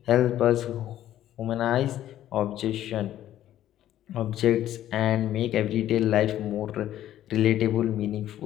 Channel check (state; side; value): quieter; right; 12.4 dB